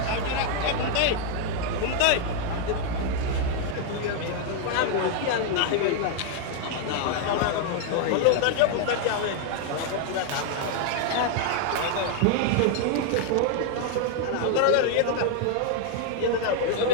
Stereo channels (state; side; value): different; both; correlation 0.00